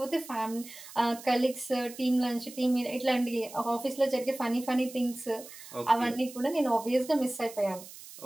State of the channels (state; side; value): noise; right; hiss, 16 dB below the sound